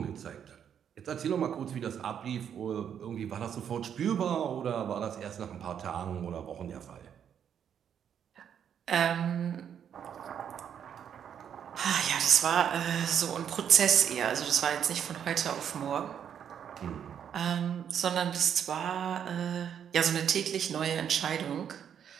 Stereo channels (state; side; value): quieter; left; 8.6 dB